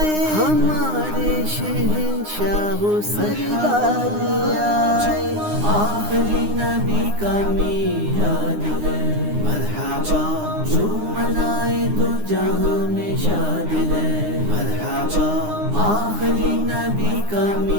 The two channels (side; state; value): left; late; 9.7 ms